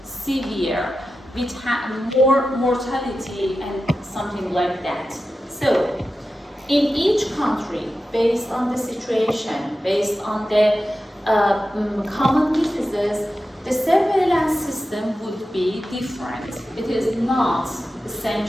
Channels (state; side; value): normal; both; correlation 0.92